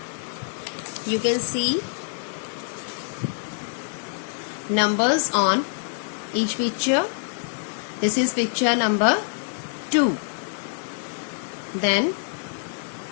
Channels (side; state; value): right; silent; 61 dB below the other